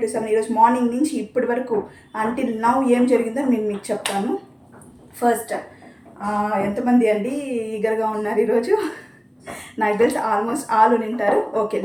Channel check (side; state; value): both; identical; correlation 1.00